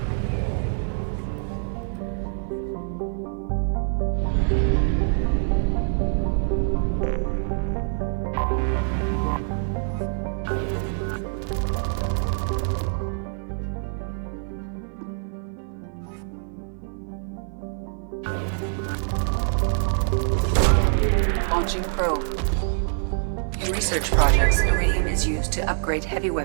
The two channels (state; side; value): silent; left; 59 dB below the other